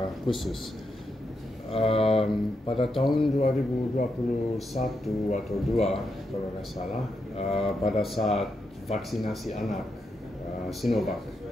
khusus. Pada tahun 2021 atau 2 kalau nggak salah, pada saat vaksinasi anak Sinovac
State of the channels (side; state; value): both; normal; correlation 0.83